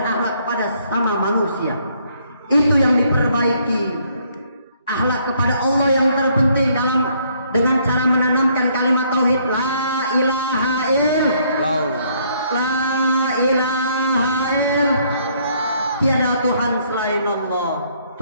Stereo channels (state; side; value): inverted; both; correlation -0.67